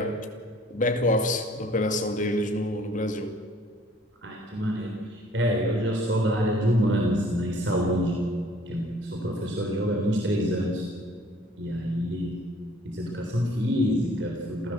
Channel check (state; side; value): normal; both; correlation 0.56